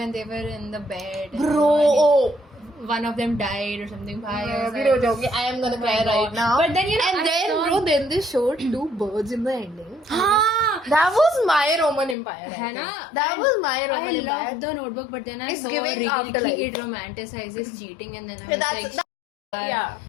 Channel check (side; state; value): right; drops out; at 12.2 s